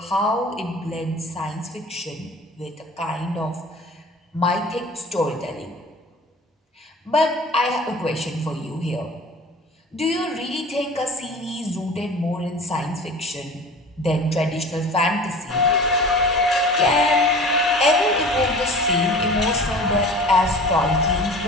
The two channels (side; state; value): both; normal; correlation 0.41